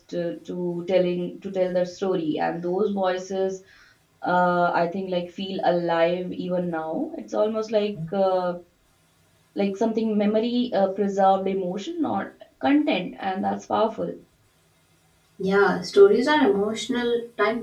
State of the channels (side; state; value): both; identical; correlation 1.00